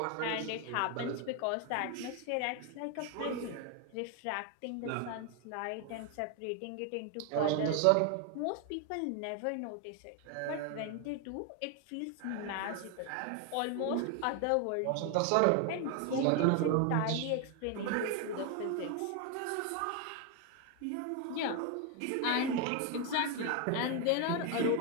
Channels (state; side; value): different; both; correlation 0.01